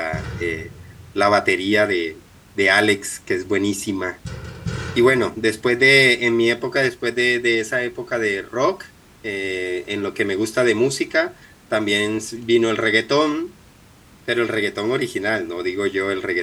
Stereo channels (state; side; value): identical; both; correlation 1.00